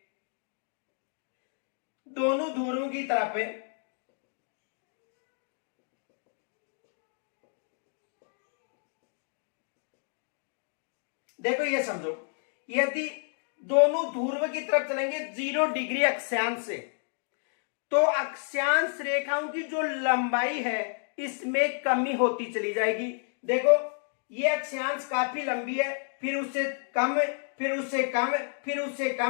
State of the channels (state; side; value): silent; right; 57 dB below the other